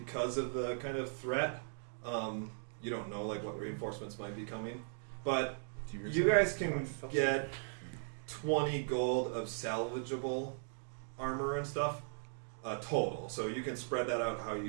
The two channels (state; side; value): silent; left; digital silence